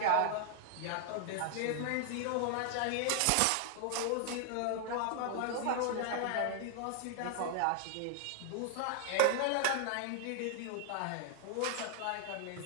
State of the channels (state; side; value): different; both; correlation 0.00